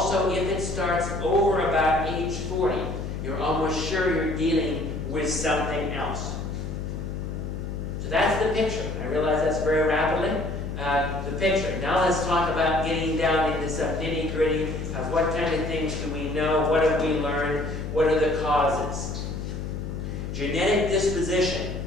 if it starts over about age 40, you're almost sure you're dealing with something else. So that's the picture. I realize that's very rapidly. The picture. Now let's talk about getting down into some nitty-gritty of what kind of things do we know, what have we learned, what are the causes. Genetic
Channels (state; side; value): noise; left; hum, 5 dB below the sound